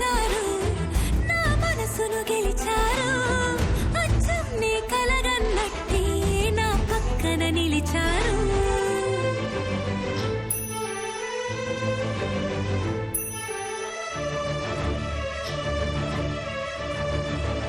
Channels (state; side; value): identical; both; correlation 1.00